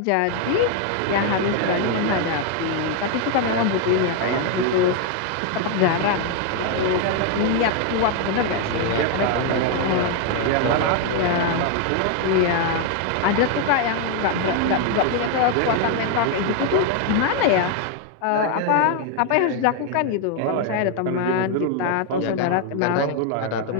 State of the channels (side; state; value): both; different; correlation 0.01